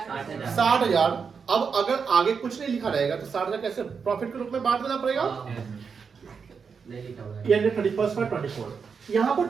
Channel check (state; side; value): quieter; left; 5.9 dB